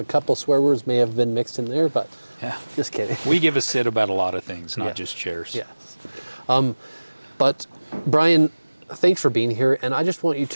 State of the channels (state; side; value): inverted; both; correlation -1.00